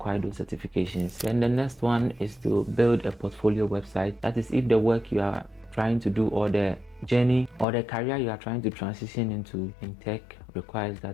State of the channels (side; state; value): right; drops out; at 7.7 s